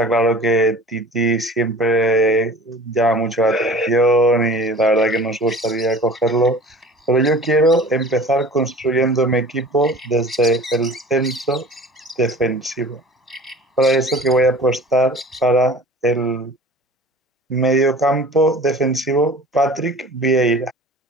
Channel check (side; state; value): both; normal; correlation 0.43